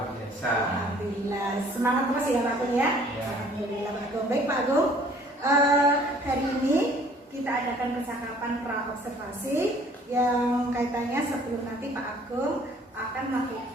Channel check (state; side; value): normal; both; correlation 0.56